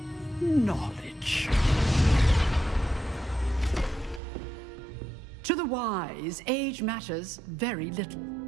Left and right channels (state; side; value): drops out; left; at 4.2 s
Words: Knowledge. To the wise, age matters very little.